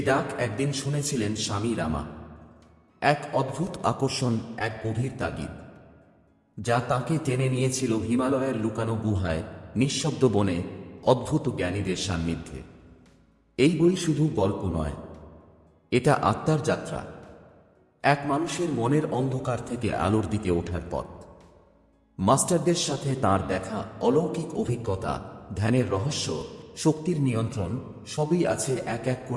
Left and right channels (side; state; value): both; identical; correlation 1.00